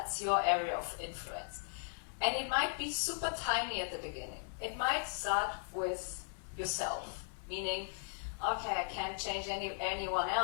your area of influence. And it might be super tiny at the beginning. It might start with yourself, meaning, okay, I can't change anyone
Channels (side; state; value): right; silent; digital silence